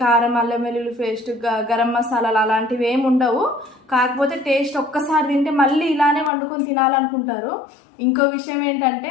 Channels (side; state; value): right; drops out; at 6.3 s